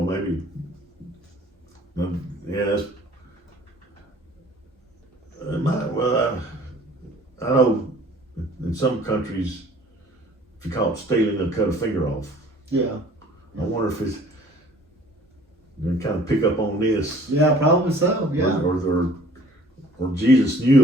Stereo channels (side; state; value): both; normal; correlation 0.52